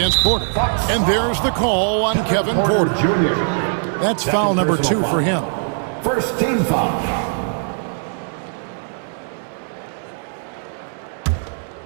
Porter. And there's the call on Kevin Porter. That's foul number 2 for him. First team foul.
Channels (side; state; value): left; silent; 66 dB below the other